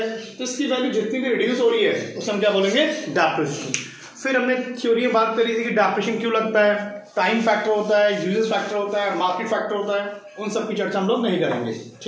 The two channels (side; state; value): both; identical; correlation 1.00